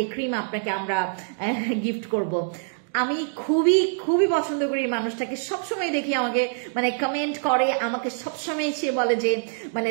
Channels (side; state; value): left; silent; digital silence